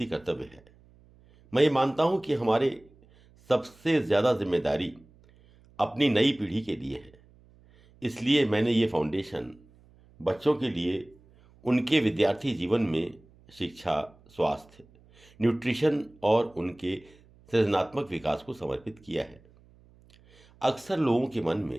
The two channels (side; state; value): right; noise; hum, 28 dB below the sound